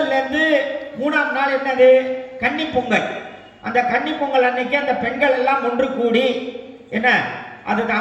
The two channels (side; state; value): both; identical; correlation 1.00